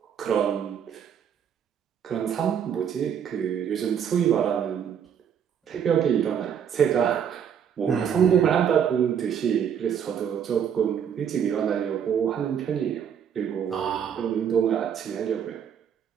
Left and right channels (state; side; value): quieter; left; 8.2 dB